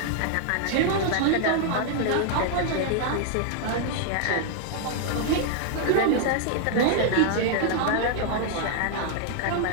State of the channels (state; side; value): different; both; correlation -0.01